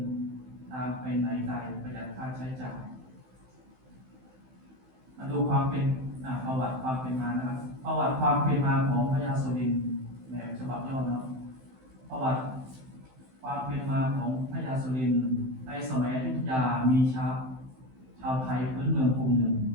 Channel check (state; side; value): late; left; 15 ms